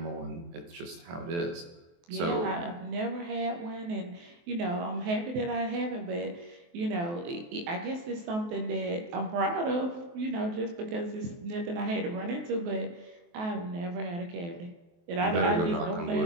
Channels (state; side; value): late; left; 23 ms